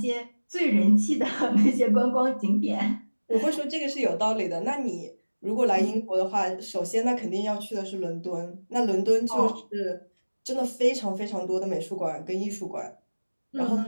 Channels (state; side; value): inverted; both; correlation -1.00